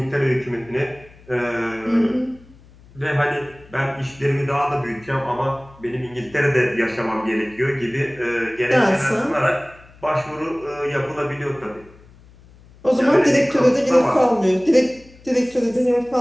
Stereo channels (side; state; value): left; noise; hum, 25 dB below the sound